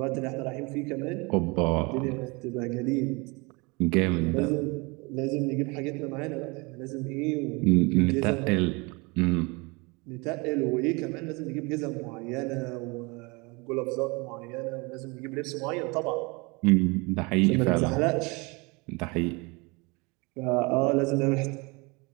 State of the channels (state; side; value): quieter; left; 27.4 dB